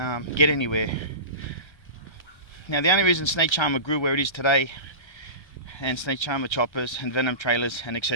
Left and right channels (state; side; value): late; right; 1.3 ms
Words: get anywhere. Now the only reason Snake Charmer grew where it is today, and Snake Charmer choppers and Venom trailers and